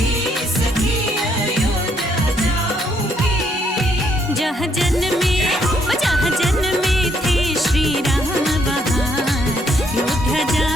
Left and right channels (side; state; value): both; normal; correlation 0.71